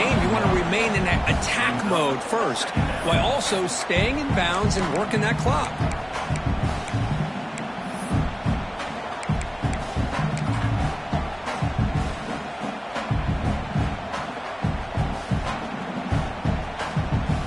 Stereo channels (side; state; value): both; identical; correlation 1.00